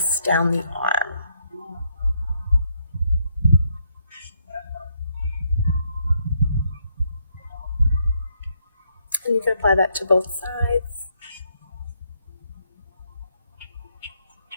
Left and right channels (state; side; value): inverted; both; correlation -0.75